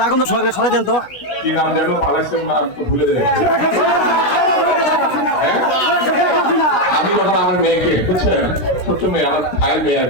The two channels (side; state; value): right; late; 16 ms